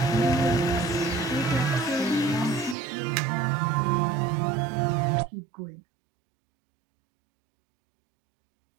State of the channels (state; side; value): drops out; left; at 2.8 s